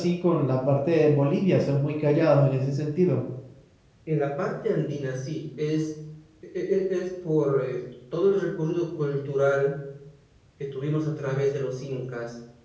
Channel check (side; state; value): both; identical; correlation 1.00